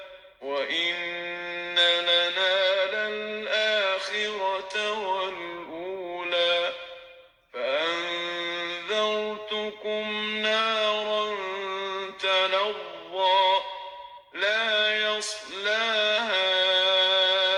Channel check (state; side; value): identical; both; correlation 1.00